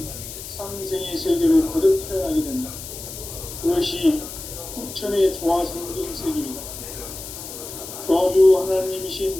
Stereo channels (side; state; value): left; noise; hiss, 11 dB below the sound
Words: 상생의 세계로 거듭 태어나게 된다. 그것이 후천의 조화성경 세계이다. 조화주